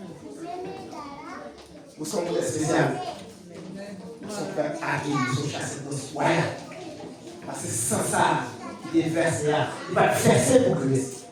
Nous sommes des spéciales. Nous sommes fait hacker, nous sommes chassés de soins. Parce que sans ça, il est versé. Il va verser pour Christ.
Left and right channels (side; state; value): both; identical; correlation 1.00